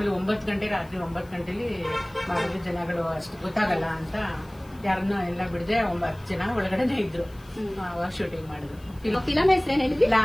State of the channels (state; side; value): noise; left; hiss, 28 dB below the sound